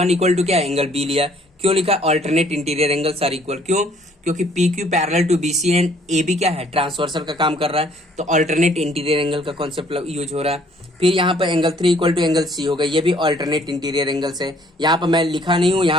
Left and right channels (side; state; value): both; normal; correlation 0.61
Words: = क्या, एंगल बी लिया। क्यों लिखा, alternate interior angles are equal. क्यों, क्योंकि P Q parallel to B C and A B क्या है, ट्रांसवर्सल का काम कर रहा है। तो ऑल्टरनेट इंटीरियर एंगल का कॉन्सेप्ट यूज हो रहा है। फिर यहाँ पर एंगल 3 = एंगल सी होगा, ये भी ऑल्टरनेट इंटीरियर एंगल्स है। यहाँ पर मैं लिखा नहीं हूँ,